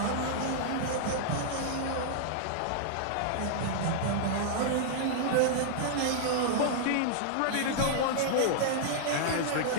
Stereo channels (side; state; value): both; different; correlation -0.01